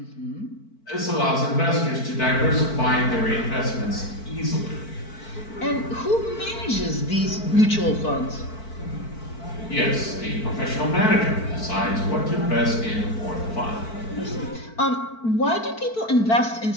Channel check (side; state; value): right; late; 4.5 ms